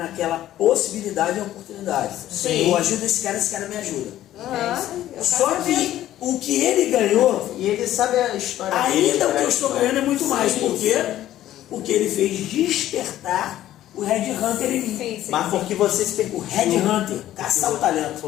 possibilidade e oportunidade. Sim. Eu ajudo esse cara me ajuda. Eu Só quero ver. que o que ele ganhou, e ele sabe a história ainda dele, o que eu estou ganhando é muito mais. Sim. Por quê? Porque ele fez despertar o Red Hunter em mim. Sim, sim. Mas porque você se O permitiu. Red Hunter, caçar o talento.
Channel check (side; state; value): right; quieter; 13.2 dB